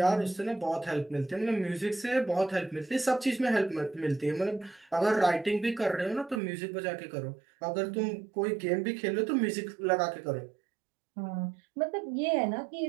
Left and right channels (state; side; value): drops out; left; at 6.4 s